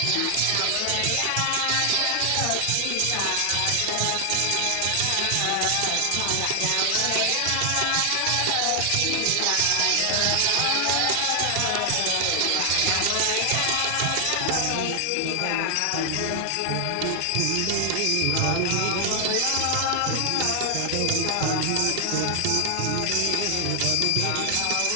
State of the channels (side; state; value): both; different; correlation 0.00